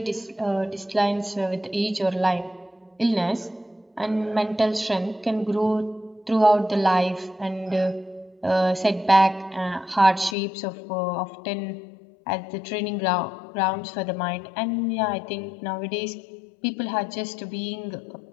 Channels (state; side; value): drops out; right; at 10.4 s